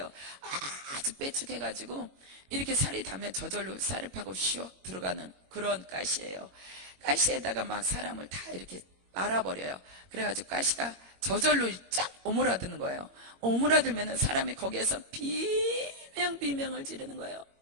아주 빼쭉해가지고 이렇게 살이 닿으면 저절로 살을 파고 슉 들어가는 그런 가시예요. 가시에다가 막 사람을 다 이렇게 말아버려요. 그래가지고 가시가 저절로 쫙 오므라드는 거예요. 오므라들면은 사람이 거기에서 비명을 지르는 거예요.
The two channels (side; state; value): left; late; 21 ms